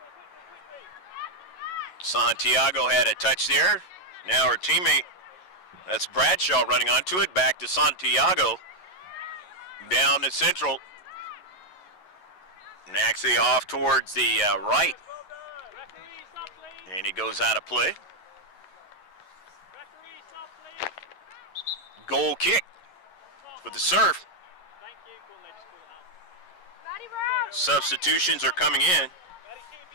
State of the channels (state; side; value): late; right; 11 ms